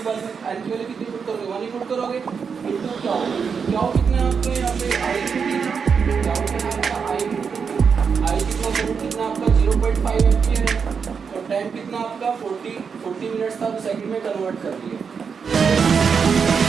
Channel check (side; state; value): left; quieter; 6.1 dB